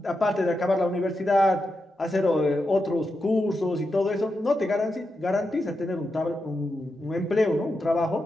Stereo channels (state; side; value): normal; both; correlation 0.87